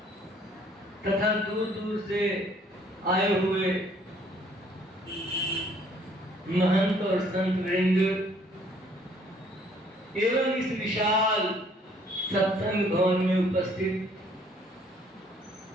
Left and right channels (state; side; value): normal; both; correlation 0.61